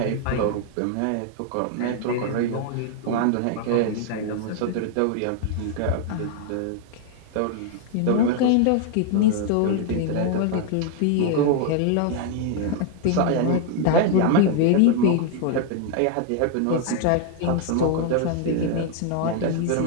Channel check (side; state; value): both; different; correlation 0.00